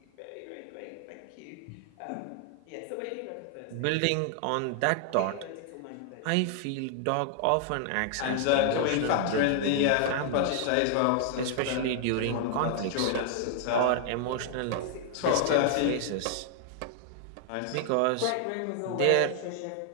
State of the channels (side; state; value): both; different; correlation 0.00